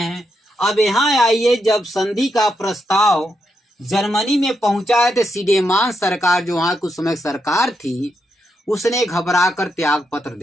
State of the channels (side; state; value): both; normal; correlation 0.82